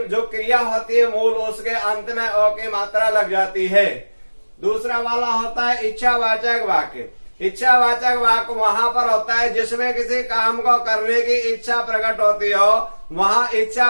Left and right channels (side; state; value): both; inverted; correlation -1.00